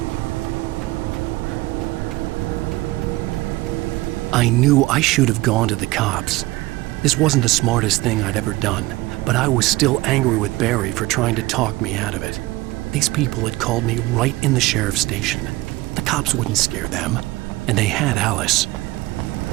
I knew I should have gone to the cops. This wasn't the smartest thing I'd ever done, but I was still angry with Barry for trying to talk me out of it. These people had called me right in the sheriff's station. The cops wouldn't scare them, and they had Alice.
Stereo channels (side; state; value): left; quieter; 19.9 dB